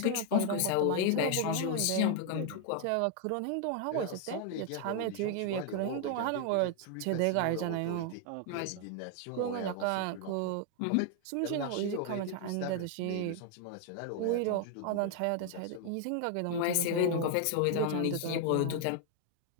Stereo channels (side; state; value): both; different; correlation 0.00